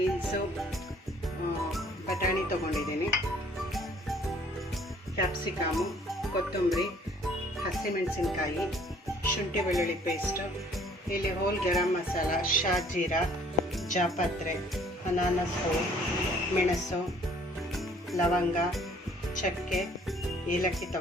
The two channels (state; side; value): normal; both; correlation 0.58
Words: ಬಟಾಣಿ ತೊಗೊಂಡಿದ್ದೀನಿ, ಕ್ಯಾಪ್ಸಿಕಮು, ಕೊತ್ತಂಬರಿ, ಹಸಿಮೆಣಸಿನ್ಕಾಯಿ, ಶುಂಠಿ ಬೆಳ್ಳುಳ್ಳಿ ಪೇಸ್ಟು, ಇಲ್ಲಿ ಹೋಲ್ ಗರಂ ಮಸಾಲ, ಶಾಜೀರಾ, ಜಾಪತ್ರೆ, ಅನಾನಸು, ಮೆಣಸು, ಲವಂಗ, ಚಕ್ಕೆ, ಏಲಕ್ಕಿ